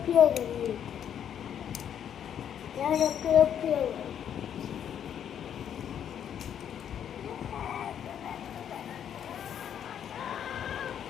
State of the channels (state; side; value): quieter; right; 9.2 dB